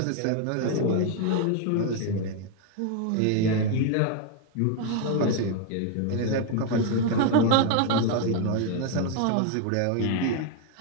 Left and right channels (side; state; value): both; different; correlation 0.00